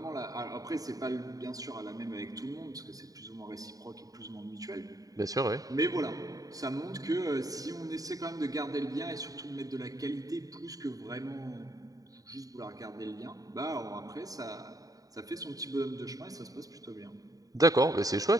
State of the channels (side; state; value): left; late; 0.18 ms